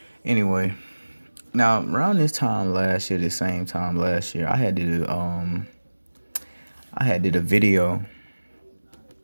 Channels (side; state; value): both; inverted; correlation -1.00